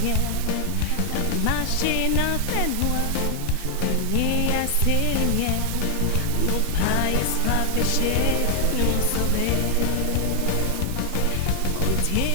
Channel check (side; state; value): both; different; correlation 0.00